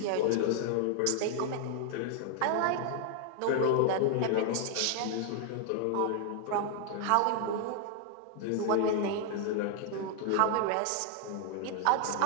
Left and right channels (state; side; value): different; both; correlation 0.00